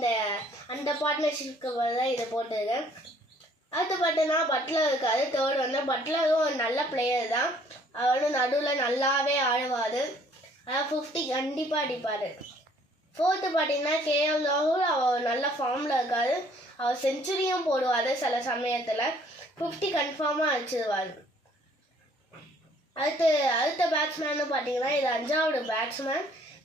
அந்த பார்ட்னர்ஷிப்க்கு தான் இதை போட்டிருக்கேன். அடுத்து பார்த்தீங்கன்னா பட்லர் இருக்காரு. தேர்ட் வந்து பட்லரும் ஒரு நல்ல பிளேயர் தான். அவரும் நடுவில் நல்லாவே ஆடுவார். அதாவது 50 கண்டிப்பாக அடிப்பார். ஃபோர்த்து பார்த்தீங்கன்னா கேஎல் ராகுல். அவர் நல்ல ஃபார்மில் இருக்கார். அவர் செஞ்சுரியும் போடுவார். சில சமயத்தில் 50 கன்ஃபார்மாக அடிச்சிடுவார். அடுத்த பேட்ஸ்மேன்னு பார்த்தீங்கன்னா இது 5வது பேட்ஸ்மேன்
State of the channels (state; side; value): normal; both; correlation 0.60